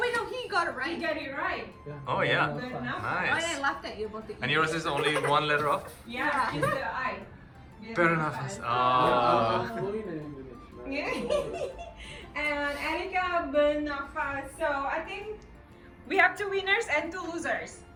no, he got it You right. got it right. Oh, yeah. Good enough. Why Nice. I laughed at you about the And yours is only one letter off? Yeah, just the I. Fair enough. I'm Ah. fluent in English. man. Yeah. And Erika Bernafas. So I think we have 2 winners and 2 losers.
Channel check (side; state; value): both; identical; correlation 1.00